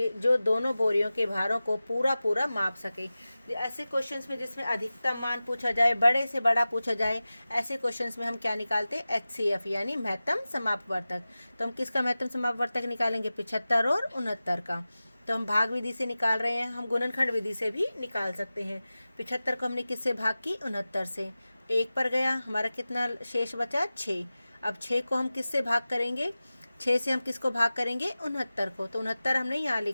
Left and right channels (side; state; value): both; inverted; correlation -0.96